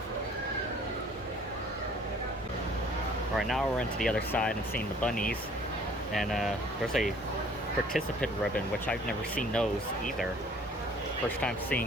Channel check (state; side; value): normal; both; correlation 0.55